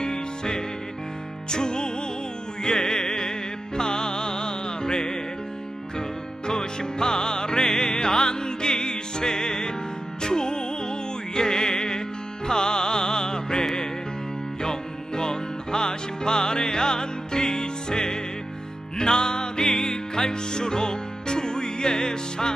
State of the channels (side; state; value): both; normal; correlation 0.91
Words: 주의 팔에 그 크신 팔에 안기세 주의 팔에 영원하신 팔에 안기세. 날이 갈수록 주의